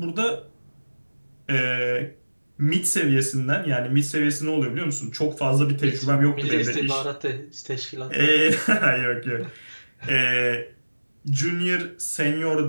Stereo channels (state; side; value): inverted; both; correlation -1.00